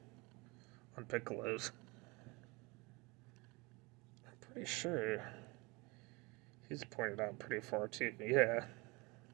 Piccolo's. I'm pretty sure he's pointed out pretty far too, yeah.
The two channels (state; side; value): quieter; left; 26.1 dB